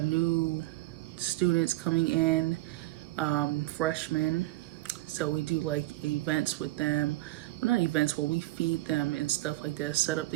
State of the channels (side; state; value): left; quieter; 18.3 dB